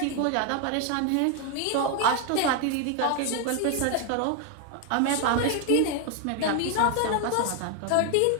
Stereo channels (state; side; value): different; both; correlation 0.01